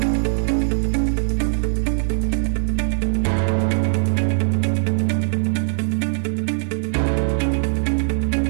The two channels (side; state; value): left; silent; 65 dB below the other